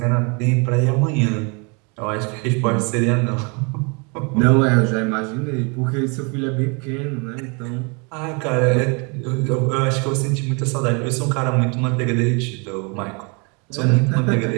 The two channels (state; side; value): quieter; left; 32.4 dB